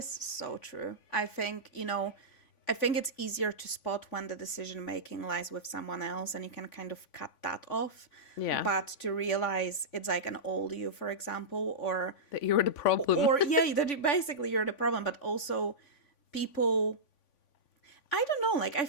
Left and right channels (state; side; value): late; right; 3.5 ms